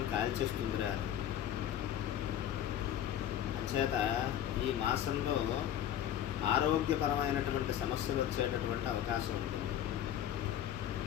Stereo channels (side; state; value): right; quieter; 10.9 dB